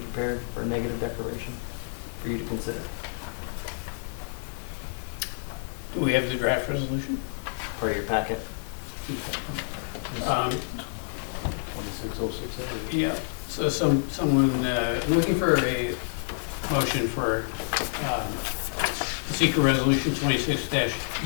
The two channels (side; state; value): right; silent; digital silence